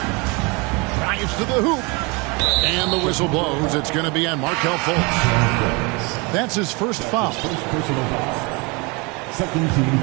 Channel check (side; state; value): left; quieter; 28.6 dB